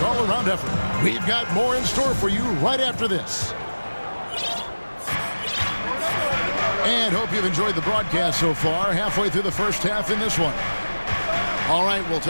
all-around effort. We've got more in store for you right after this. And hope you've enjoyed the broadcast so far, halfway through the first half in this one. All right, we'll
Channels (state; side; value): inverted; both; correlation -1.00